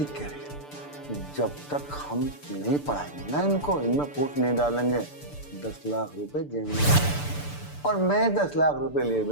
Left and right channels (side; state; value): right; late; 6.8 ms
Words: कह रही है। जब तक हम नहीं पढ़ाएंगे ना इनको, इनमें फूट नहीं डालेंगे, 10 लाख रुपए जेब में, और मैं 10 लाख रुपए लिए